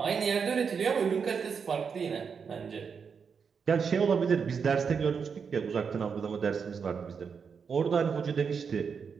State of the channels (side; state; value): left; quieter; 6.1 dB